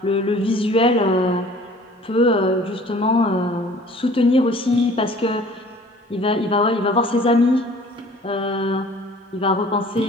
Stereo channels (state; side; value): normal; both; correlation 0.50